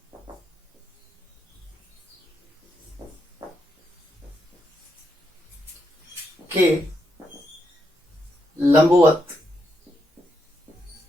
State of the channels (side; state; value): both; normal; correlation 0.81